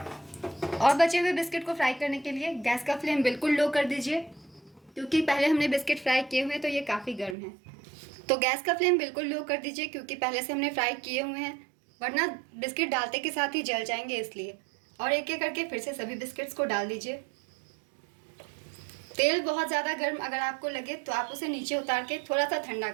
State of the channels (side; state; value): left; drops out; at 7.4 s